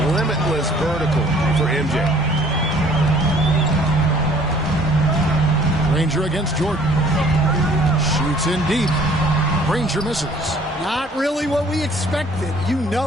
Limitless vertical for MJ. Granger against Jordan. Shoots in deep. Granger misses. Not really what we expected. You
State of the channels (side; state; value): both; normal; correlation 0.56